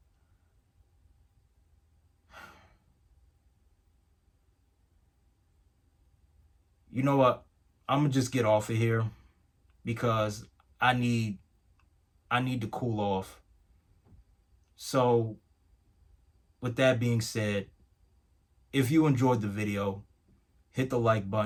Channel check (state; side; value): identical; both; correlation 1.00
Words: you know what? I'm gonna just get off of here, because I need I need to cool off. So, with that being said, if you enjoyed the video, hit the like